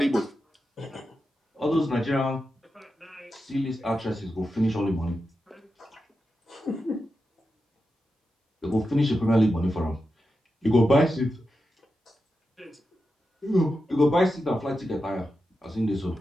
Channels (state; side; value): normal; both; correlation 0.90